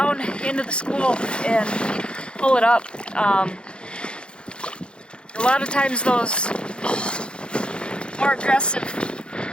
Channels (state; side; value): late; right; 0.054 ms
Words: into the school and pull it up. A lot of times those more aggressive